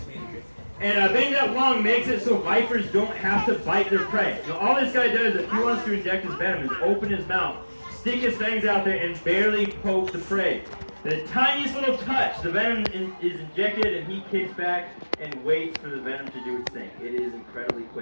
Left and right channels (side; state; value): both; inverted; correlation -1.00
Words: And being that long makes it so vipers don't have to bite their prey. Now, all this guy does, if he wants to inject his venom, is open his mouth, stick his fangs out there, and barely poke the prey. The tiniest little touch, the venom is injected, and he kicks back and waits for the venom to do its thing. It is incredibly